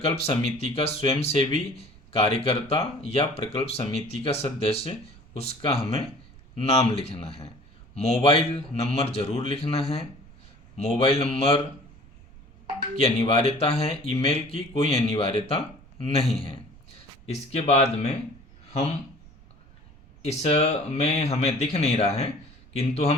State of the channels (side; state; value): right; noise; rumble, 23 dB below the sound